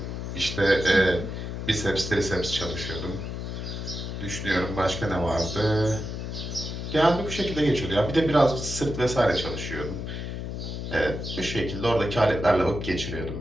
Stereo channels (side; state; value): left; noise; hum, 5 dB below the sound